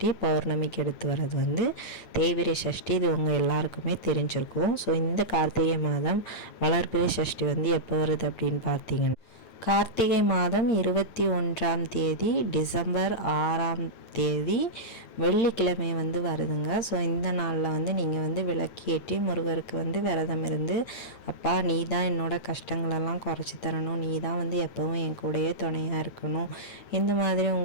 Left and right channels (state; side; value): late; right; 9.2 ms